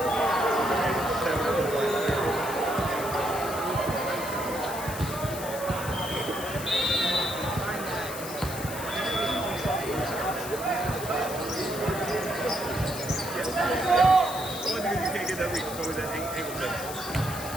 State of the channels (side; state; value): left; noise; hiss, 10 dB below the sound